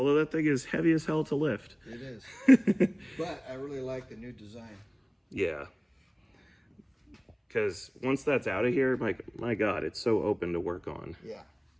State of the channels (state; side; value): identical; both; correlation 1.00